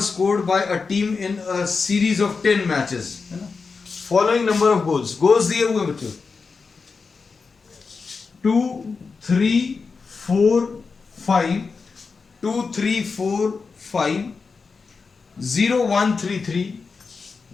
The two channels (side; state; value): right; quieter; 4.8 dB